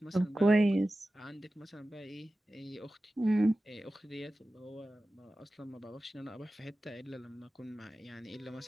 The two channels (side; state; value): both; normal; correlation 0.95